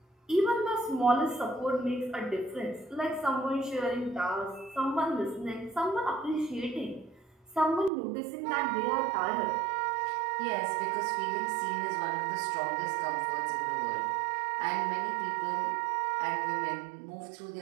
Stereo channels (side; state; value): left; drops out; at 7.9 s